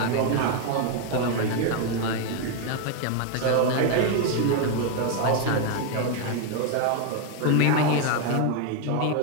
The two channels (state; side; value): different; both; correlation 0.01